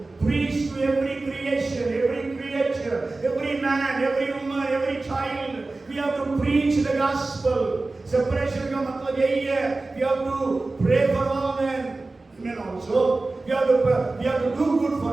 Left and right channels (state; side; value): quieter; left; 3.3 dB